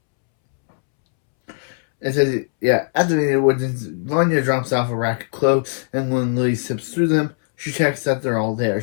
It says, yeah, after the woods, Vanya drops off a rack of clothes, and when Lily sips through them, she checks that they're all there.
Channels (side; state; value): right; silent; 66 dB below the other